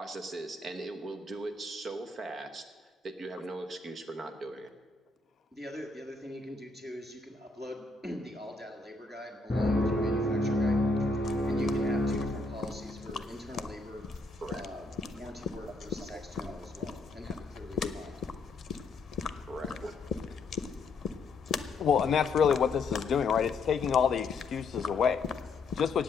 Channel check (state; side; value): quieter; right; 3.8 dB